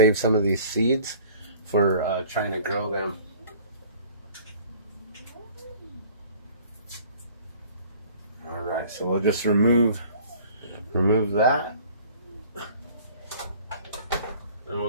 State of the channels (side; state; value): both; inverted; correlation -0.50